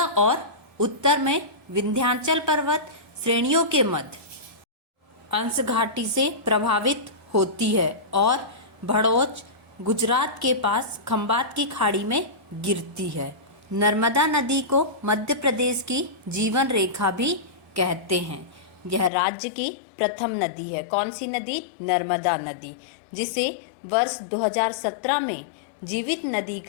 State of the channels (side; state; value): right; drops out; at 19.1 s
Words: और उत्तर में विंध्याचल पर्वत श्रेणियों के मध्य अंश घाटी से प्रभावित होती है और भड़ोच गुजरात के पास खंबात की खाड़ी में गिरती है। नर्मदा नदी को मध्य प्रदेश की जीवन रेखा भी कहते हैं। यह राज्य की प्रथम नदी है। कौन सी नदी? नर्मदा नदी, जिसे वर्ष 2017 में जीवित नदी